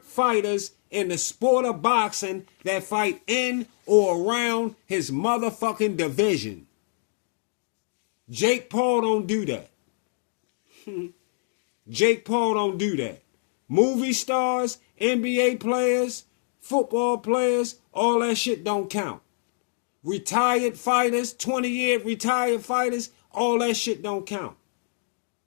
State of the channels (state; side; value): silent; right; digital silence